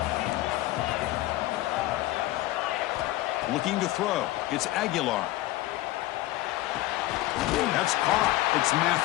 Looking to throw. It's Aguilar. That's caught. It's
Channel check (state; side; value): quieter; right; 16.9 dB